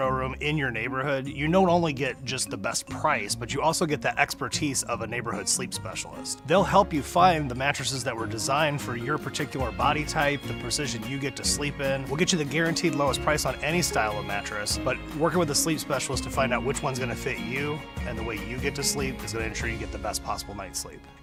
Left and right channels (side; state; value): both; identical; correlation 1.00